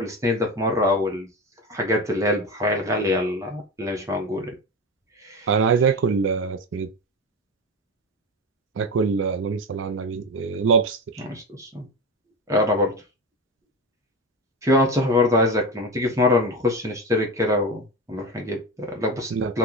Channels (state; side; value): normal; both; correlation 0.22